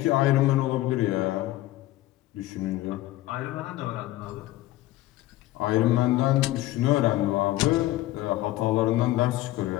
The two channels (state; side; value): quieter; right; 16.3 dB